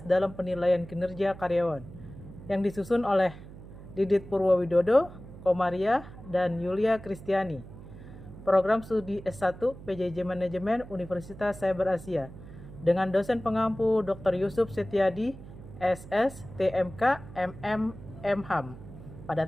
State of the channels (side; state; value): right; noise; hum, 16 dB below the sound